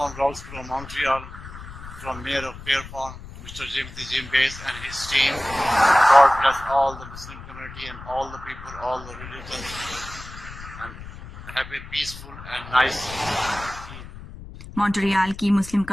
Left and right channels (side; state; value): left; noise; rumble, 14 dB below the sound